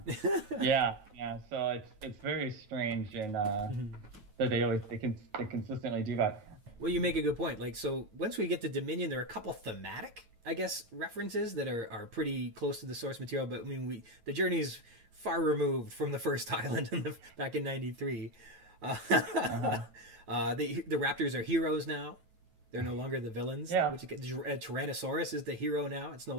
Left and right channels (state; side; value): late; left; 9.3 ms